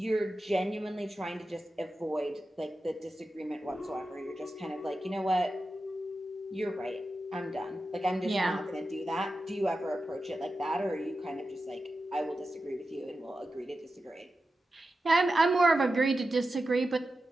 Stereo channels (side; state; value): both; normal; correlation 0.91